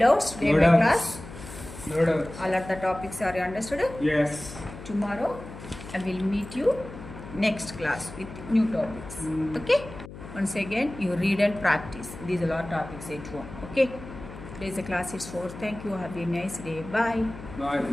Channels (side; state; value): left; noise; hum, 14 dB below the sound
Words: today No my doubts. class? No doubts. All of the topics are you understood? Yes. Tomorrow I will meet you next class with new topics. Okay? Once again you read and practice. These are all topics at home. Okay? Today's class is over. Thank you. Have a nice day. Bye. Bye.